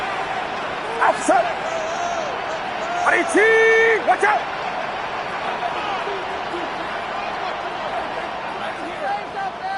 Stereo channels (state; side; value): identical; both; correlation 1.00